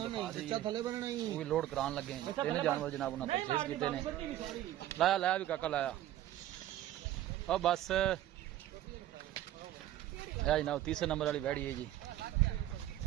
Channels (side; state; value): left; quieter; 13.3 dB